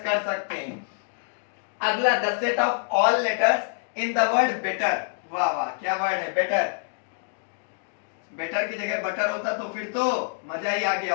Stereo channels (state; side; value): silent; right; digital silence